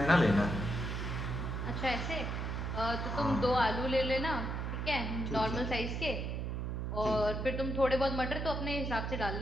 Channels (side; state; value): right; noise; hum, 2 dB below the sound